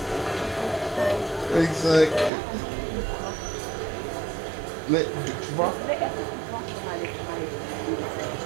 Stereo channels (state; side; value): drops out; left; at 2.3 s